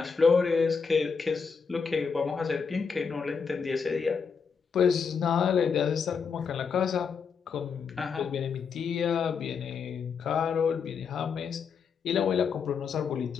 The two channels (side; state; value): right; quieter; 5.9 dB